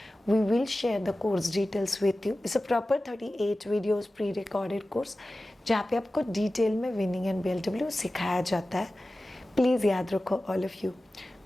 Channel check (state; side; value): normal; both; correlation 0.96